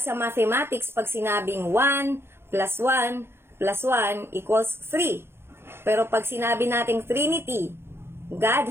sa mathematics, pag sinabing 1 plus 1 plus 1 equals 3. Pero pag sinabi nating Trinity,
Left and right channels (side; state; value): left; late; 0.12 ms